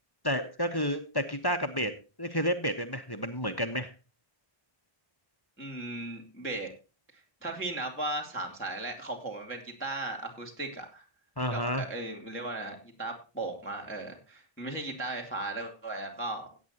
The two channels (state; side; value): late; right; 1.1 ms